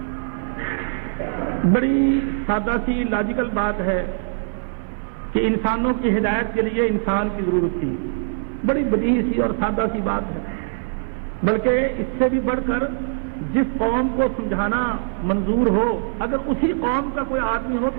بڑی سادہ سی لاجیکل بات ہے کہ انسانوں کی ہدایت کے لیے انسان کی ضرورت تھی. بڑی بدیہی سی اور سادہ سی بات ہے, بلکہ اس سے بھی بڑھ کر جس قوم کو سمجھانا منظور ہو, اگر اسی قوم کا کوئی آدمی ہو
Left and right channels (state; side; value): silent; left; digital silence